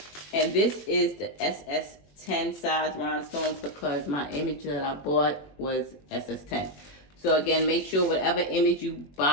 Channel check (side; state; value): right; late; 21 ms